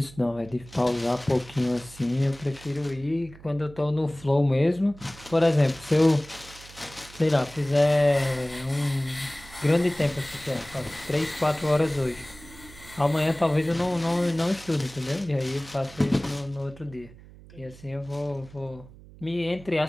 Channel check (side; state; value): right; noise; hum, 20 dB below the sound